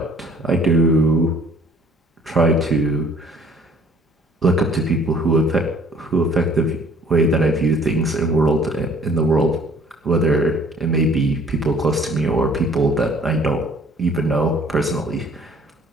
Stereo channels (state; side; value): normal; both; correlation 0.55